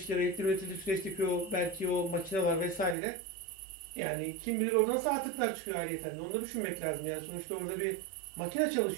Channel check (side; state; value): left; drops out; at 3.0 s